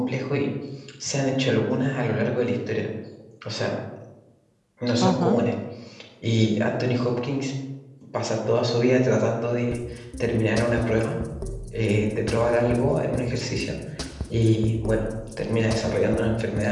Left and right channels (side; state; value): both; identical; correlation 1.00